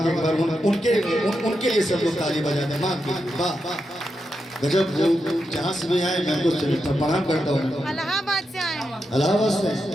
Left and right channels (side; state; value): both; normal; correlation 0.86